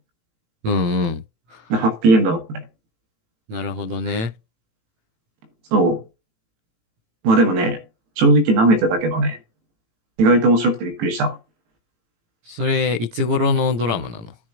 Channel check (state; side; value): late; left; 18 ms